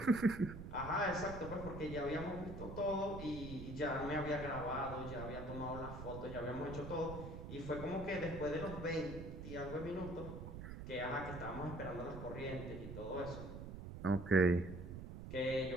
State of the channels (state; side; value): noise; right; rumble, 8 dB below the sound